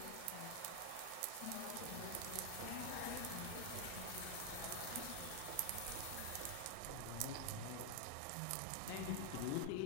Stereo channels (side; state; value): both; different; correlation 0.00